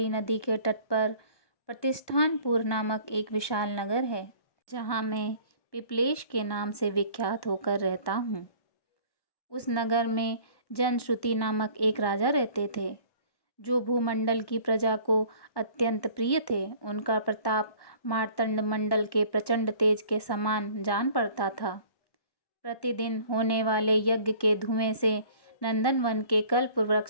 नदी के तट पर प्रतिष्ठानपुर नामक एक विशाल नगर है, जहाँ मैं पिपलेश के नाम से विख्यात होकर रहता हूँ। उस नगर में जनश्रुति नामक एक राजा रहते थे, जो भूमंडल की प्रजा को अत्यंत प्रिय थे। उनका प्रताप मार्तंड मंडल के प्रचंड तेज के समान जान पड़ता था। प्रतिदिन होने वाले यज्ञ के धुएं से नंदनवन के कल्प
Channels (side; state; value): right; late; 1.1 ms